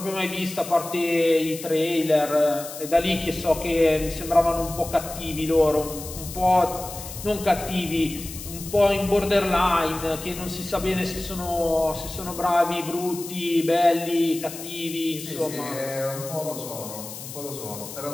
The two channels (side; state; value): left; noise; hiss, 11 dB below the sound